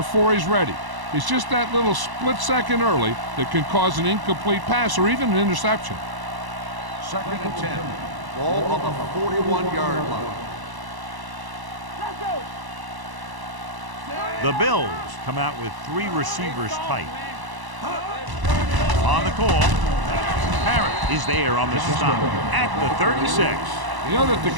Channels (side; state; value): left; late; 1.0 ms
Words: he's ready. It's just that little split second early that can cause an incomplete pass or even an interception. 2nd and 10. Ball on the 41-yard line. The Bills come out with 3 receivers tight. On the call, Parrott is there on the stop at the 36. You know that the